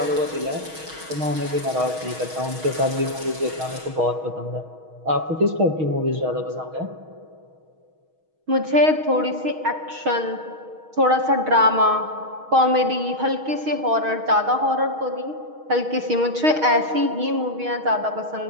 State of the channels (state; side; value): late; left; 6.3 ms